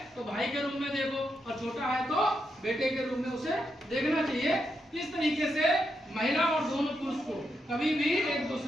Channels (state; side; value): normal; both; correlation 0.83